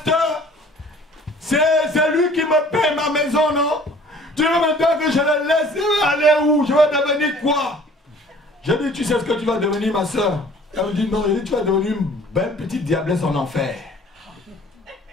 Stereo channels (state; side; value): normal; both; correlation 0.52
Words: c'est lui qui me paie ma maison, non? Tu veux maintenant que je le laisse aller où? Je vais devenir quoi? J'ai dit, tu sais ce que tu vas devenir, ma soeur? Elle me dit, non, tu vas devenir une belle petite diablesse en enfer.